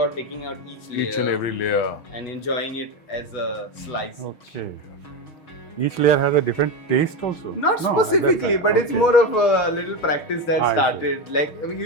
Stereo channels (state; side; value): late; right; 6.4 ms